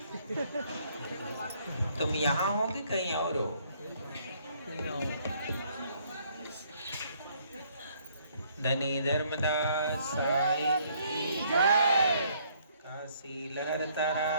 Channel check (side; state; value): both; inverted; correlation -0.65